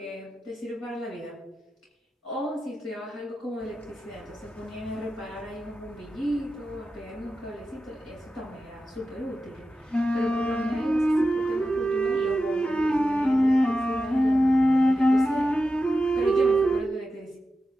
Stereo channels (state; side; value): normal; both; correlation 0.91